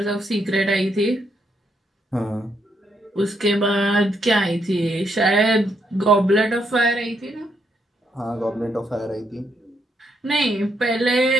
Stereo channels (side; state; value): both; normal; correlation 0.77